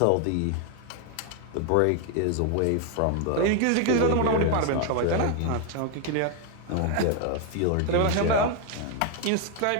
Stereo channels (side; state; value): both; different; correlation 0.00